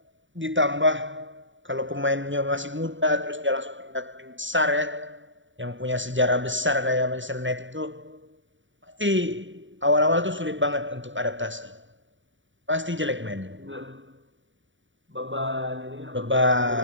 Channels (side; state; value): left; late; 0.55 ms